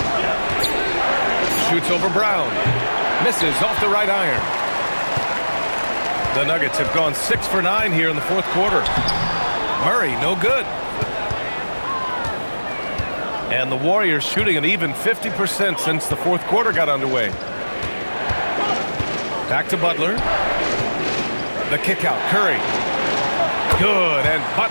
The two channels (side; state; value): both; inverted; correlation -1.00